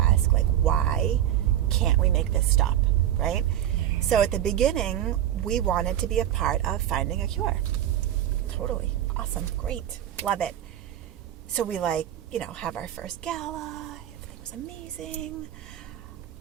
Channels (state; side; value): quieter; left; 11.6 dB